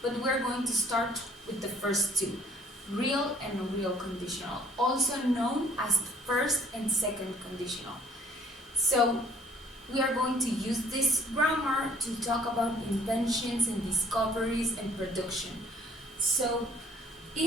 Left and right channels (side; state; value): both; normal; correlation 0.57